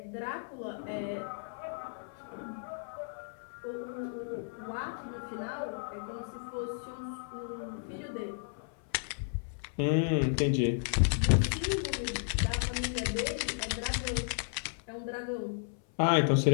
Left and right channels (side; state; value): right; silent; 55 dB below the other